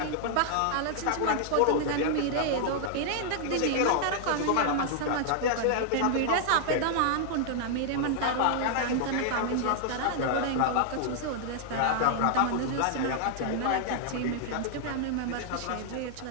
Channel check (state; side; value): different; both; correlation -0.01